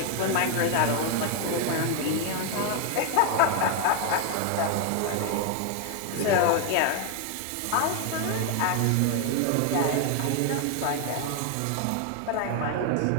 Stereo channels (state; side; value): different; both; correlation 0.01